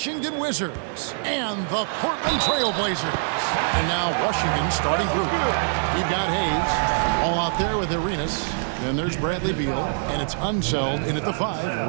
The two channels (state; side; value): silent; left; digital silence